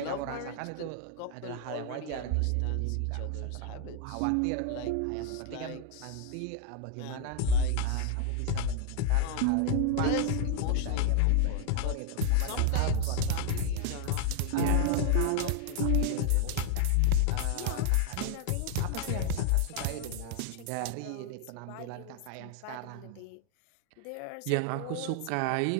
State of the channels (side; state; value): both; different; correlation 0.00